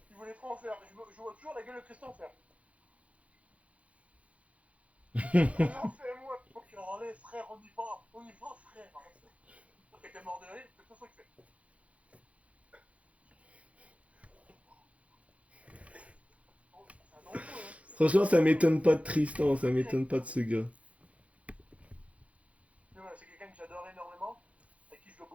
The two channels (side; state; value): left; late; 0.065 ms